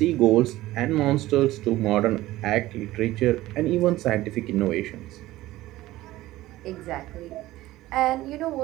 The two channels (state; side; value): quieter; left; 16.6 dB